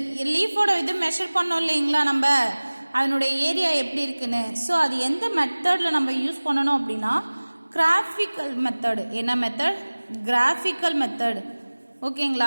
லீஃபோட இது மெஷர் பண்ணோம் இல்லைங்களா நம்ம, அதனுடைய ஏரியா எப்படி இருக்குன்னு. ஸோ அது எந்த மெத்தடில் நம்ம யூஸ் பண்ணணும் அப்படின்னா, கிராஃபிக்கல் மெத்தடு. என்ன மெத்தட், கிராஃபிக்கல் மெத்தட்.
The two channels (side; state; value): both; inverted; correlation -1.00